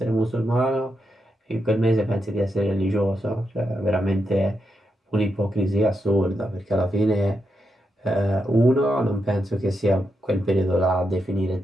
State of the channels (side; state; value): both; normal; correlation 0.84